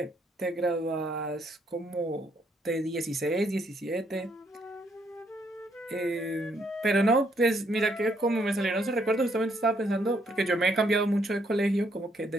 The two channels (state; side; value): normal; both; correlation 0.72